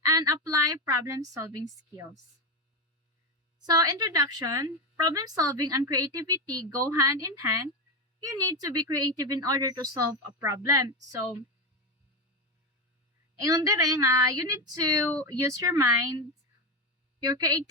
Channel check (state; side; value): normal; both; correlation 0.13